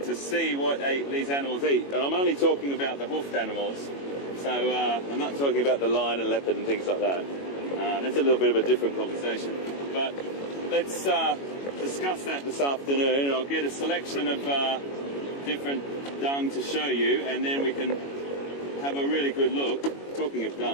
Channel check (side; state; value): right; late; 21 ms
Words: see what these animals eat, and I'm only talking about the hoofed animals. So I'm not talking about the lion and leopard and things like that. That's a little bit of a different conversation. But let's discuss that this afternoon, and I'll get a selection of different dung to show you, and then we can have a really good look. Talking of